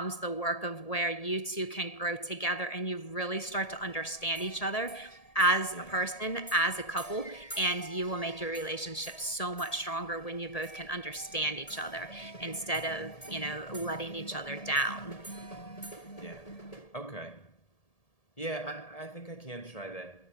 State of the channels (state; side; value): late; right; 1.7 ms